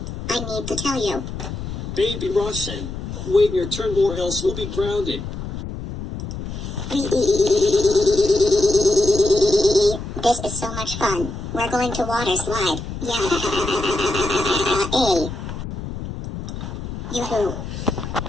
I need to tell you. Baby Roshan, wait your turn or else we'll be grounded. This is so much fun. We're going to water slide. Yeah. Yoo-hoo.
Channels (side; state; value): left; noise; rumble, 7 dB below the sound